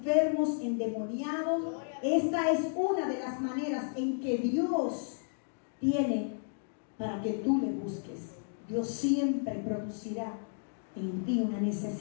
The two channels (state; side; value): silent; right; digital silence